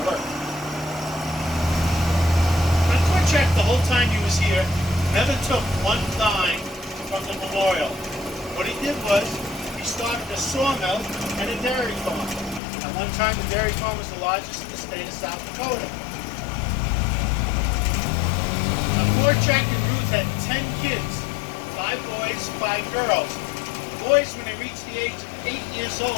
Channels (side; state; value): right; drops out; at 12.6 s